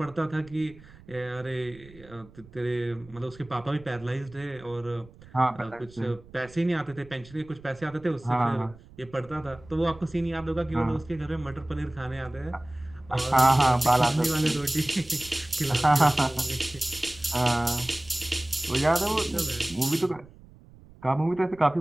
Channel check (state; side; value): noise; right; rumble, 22 dB below the sound